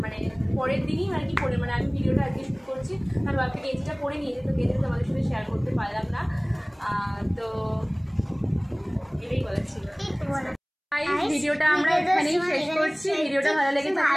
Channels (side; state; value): both; identical; correlation 1.00